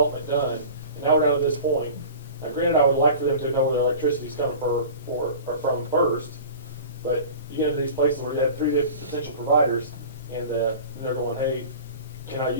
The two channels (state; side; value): inverted; both; correlation -0.39